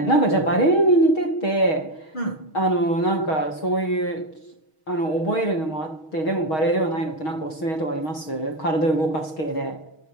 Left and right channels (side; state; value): right; late; 6.4 ms